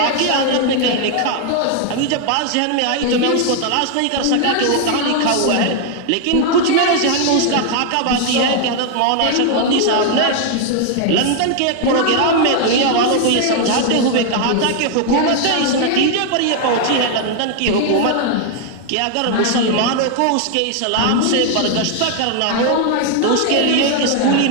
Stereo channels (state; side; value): different; both; correlation 0.00